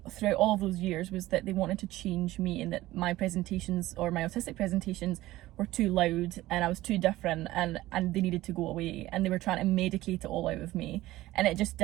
throughout all of those years was that they wanted to change me, and that my presentations, or my autistic presentations, were too loud and I was too different, and they needed to go away, and they were trying to medicate it all out of me, and it just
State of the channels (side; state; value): left; quieter; 16.7 dB